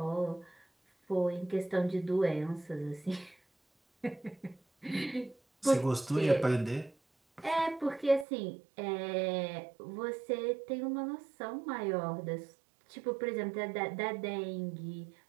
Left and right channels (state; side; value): drops out; left; at 8.2 s